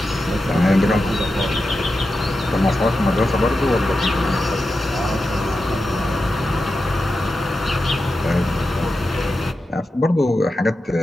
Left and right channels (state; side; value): normal; both; correlation 0.90